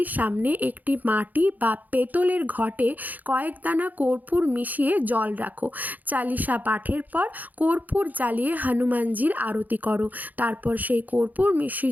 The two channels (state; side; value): late; left; 0.082 ms